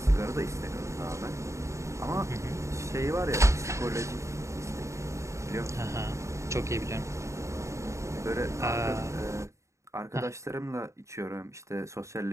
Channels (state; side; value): late; left; 0.14 ms